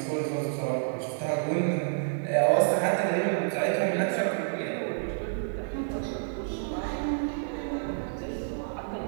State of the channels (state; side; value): silent; left; digital silence